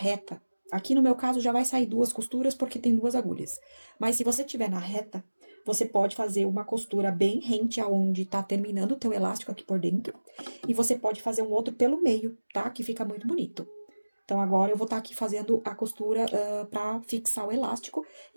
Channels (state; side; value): inverted; both; correlation -1.00